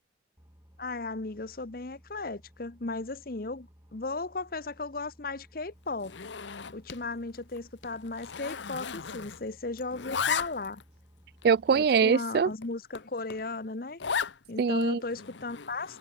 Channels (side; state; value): both; normal; correlation -0.05